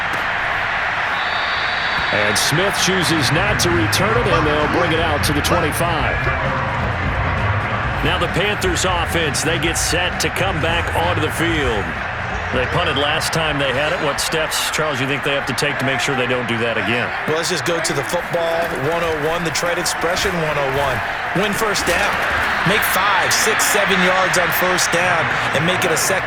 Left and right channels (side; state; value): both; identical; correlation 1.00